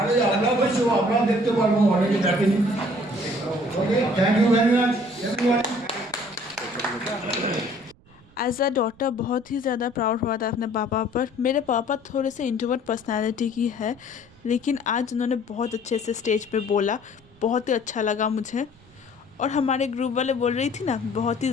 আমরা বলছি আমরা দেখতে পারবো অনেকে দেখেনি okay thank you very much everyone. As a daughter बहुत ही ज़्यादा प्राउड हुआ था अपने पापा पर। मेरे पापा थोड़े से इंट्रोवर्ट पर्सनालिटी की है, लेकिन आज उन्होंने बहुत अच्छे से स्टेज पे बोला, बहुत ही अच्छा लगा मुझे। और हमारे ग्रुप वाले बोल रही थी ना बहुत ही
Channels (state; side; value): noise; right; rumble, 27 dB below the sound